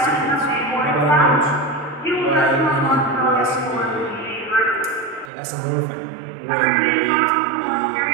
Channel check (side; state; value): left; drops out; at 5.3 s